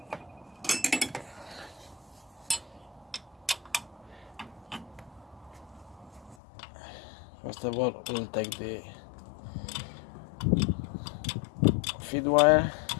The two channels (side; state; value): right; drops out; at 6.4 s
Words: First of all, we'll take the feed wire.